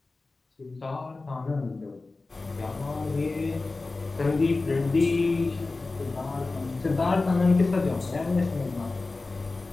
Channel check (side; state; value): right; quieter; 3.5 dB